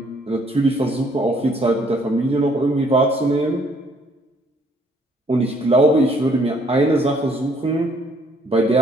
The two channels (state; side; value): normal; both; correlation 0.64